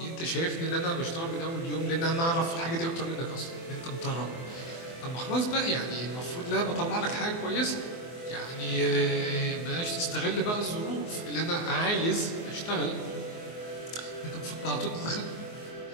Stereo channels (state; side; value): late; right; 24 ms